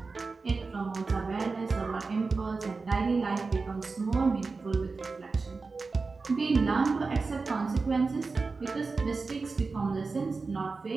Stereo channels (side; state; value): left; quieter; 4.2 dB